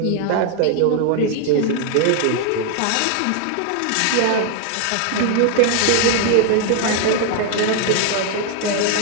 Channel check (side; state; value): both; different; correlation 0.00